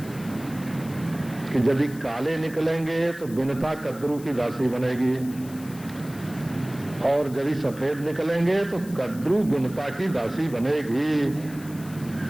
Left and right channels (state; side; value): noise; left; hiss, 19 dB below the sound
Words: कि यदि काले निकलेंगे तो बिनता कद्रू की दासी बनेगी और यदि सफेद निकलेंगे तो कद्रू बिनता की दासी बनेगी।